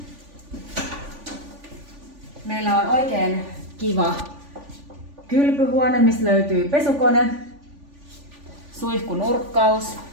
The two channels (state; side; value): late; left; 3.5 ms